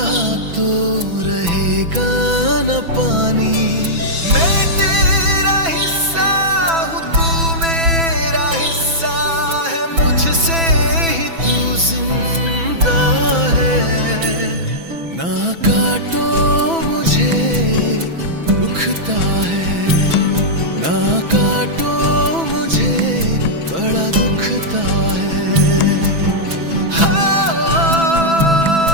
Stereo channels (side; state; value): left; late; 6.0 ms